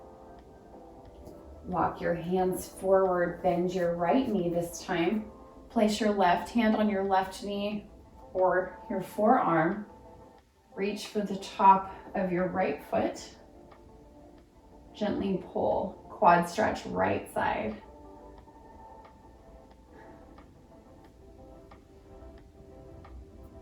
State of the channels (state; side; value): identical; both; correlation 1.00